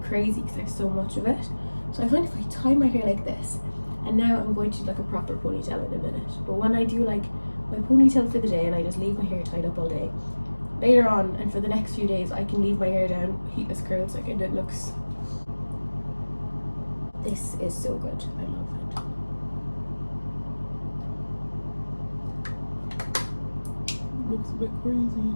crazy because I have so much of it. So I find if I tie my hair like this, and now I'm going to do like a proper ponytail in a minute, but when I do like my ponytail for the day and I just leave my hair tied up all day, later on and for the next few days I can leave my hair down heatless curls like, and it looks, this is so good. I love it. Looks a bit crazy.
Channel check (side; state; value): both; inverted; correlation -1.00